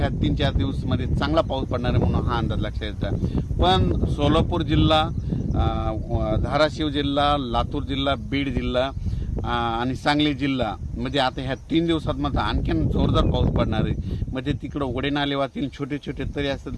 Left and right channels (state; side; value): identical; both; correlation 1.00